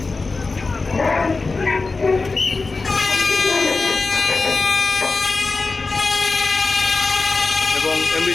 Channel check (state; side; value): quieter; right; 3.9 dB